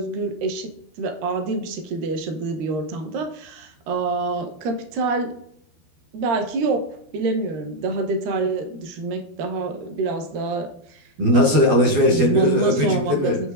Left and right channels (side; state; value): left; late; 12 ms